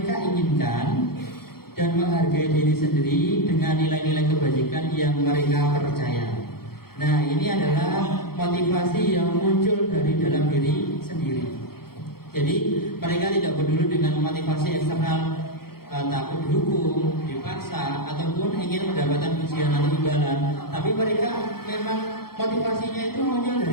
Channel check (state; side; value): late; right; 0.94 ms